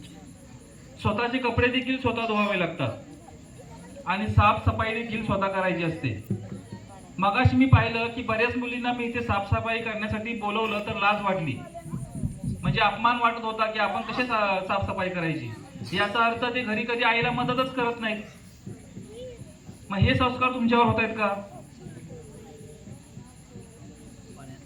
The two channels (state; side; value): identical; both; correlation 1.00